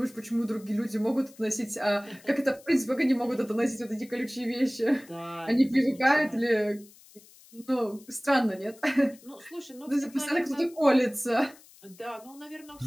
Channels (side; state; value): left; noise; hiss, 24 dB below the sound